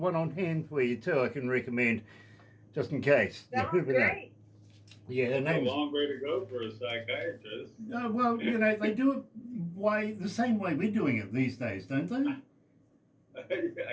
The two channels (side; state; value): both; identical; correlation 1.00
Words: on hand for you too. I can recommend, just in case. Sounds You never know. great. Yeah, her It's a name's. long way to go for a psychiatrist. Well, they do it the same way we're doing it these days, don't they? I